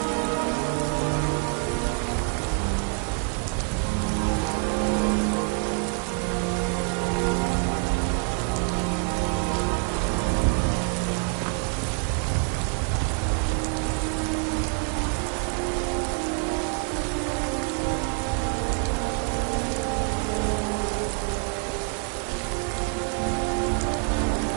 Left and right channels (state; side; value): quieter; left; 39.6 dB